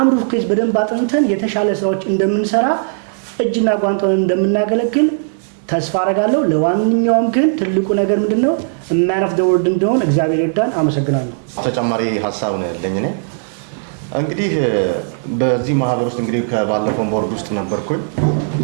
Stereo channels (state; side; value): silent; left; 66 dB below the other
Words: ሩፍ ኬዝ በደንብ አጥንተን የተሻለ ስራዎች እንደምንሰራ እጅና ጓንቷን እንደምናገለግል ተስፋ አረጋለሁ። ለዋንኛውም ግን ትልቁ ነገር ምንድነው ማን ኦፍ ዘ ወርልድ እንደሆነ እግዚአብሔር ይርዳን። አመሰግናለሁ። ተጨማሪ ሀሳብ ነው ያለኝ እኔ እንግዲህ በዚህ ማህበር ውስጥ እንግዲህ ከባለፈው ቦርድ ውስጥ ነበርኩኝ